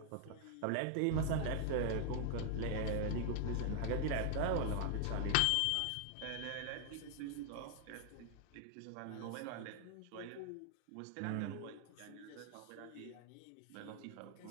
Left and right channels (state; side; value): different; both; correlation 0.00